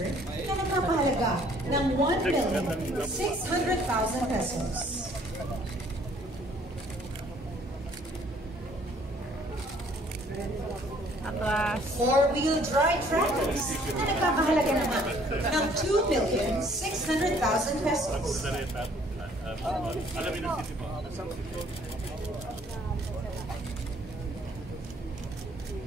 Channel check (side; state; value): both; normal; correlation 0.60